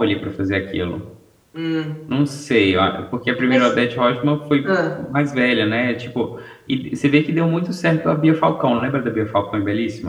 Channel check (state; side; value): identical; both; correlation 1.00